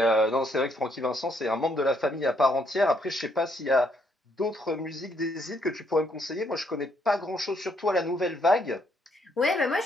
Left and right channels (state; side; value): normal; both; correlation 0.71